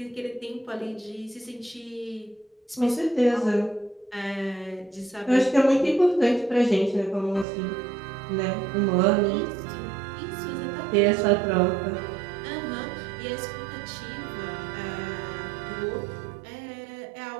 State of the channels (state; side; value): drops out; left; at 7.5 s